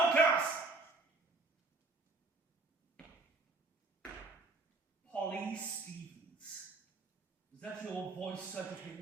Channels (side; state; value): left; quieter; 3.5 dB